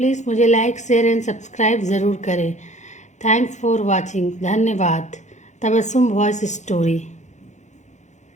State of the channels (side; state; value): right; late; 0.34 ms